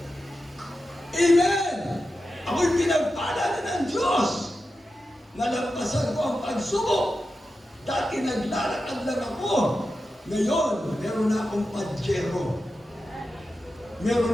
Amen! Ako'y pinagpala na ng Diyos. Nalampasan ko ang pagsubok. Dati naglalakad lang ako. Ngayon, meron na akong Pajero. Meron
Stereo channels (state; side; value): normal; both; correlation 0.91